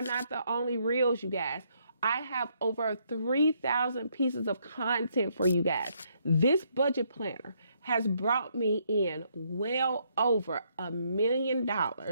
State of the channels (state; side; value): inverted; both; correlation -0.72